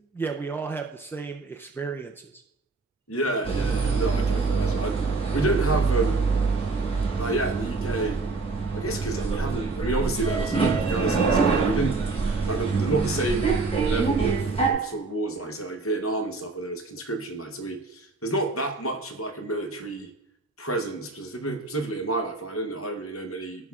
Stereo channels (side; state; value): left; quieter; 3.6 dB